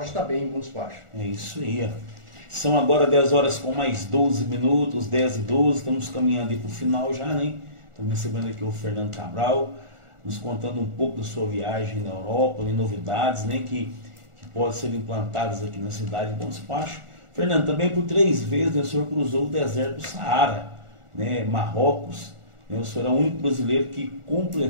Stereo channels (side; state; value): left; late; 1.4 ms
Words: estar bem em Bom Despacho. É isso aí. São agora 10 horas com mais 12 minutos, 10 e 12, estamos caminhando para o final já, né? Estamos recebendo aqui o Fernando Cabral, nos contando um pouco da sua viagem na Europa, de novidades, né, que podem ser implantadas aqui na cidade de Bom Despacho. Fernando, também por 3 vezes o senhor cruzou o deserto do Saara, né, Marrocos, né, o senhor é o único brasileiro que